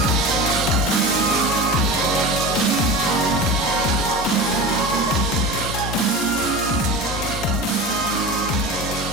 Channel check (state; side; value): normal; both; correlation 0.30